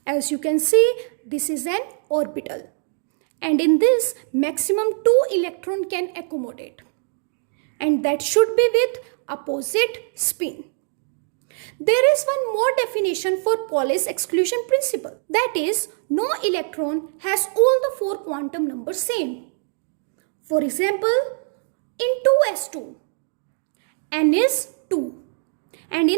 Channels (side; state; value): left; silent; 60 dB below the other